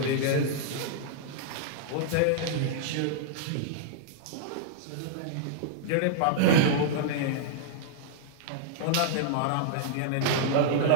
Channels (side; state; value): both; different; correlation -0.01